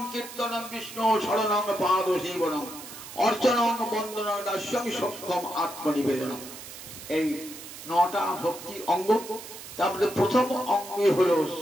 কীর্তনং বিষ্ণু শরণং পাদ সেবনং অর্চনং বন্দনং দাস্যং সক্ষম আত্মনিবেদনং। এই 9টা ভক্তির অঙ্গ। তারপরে প্রথম অঙ্গই হলো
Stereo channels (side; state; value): right; noise; hiss, 13 dB below the sound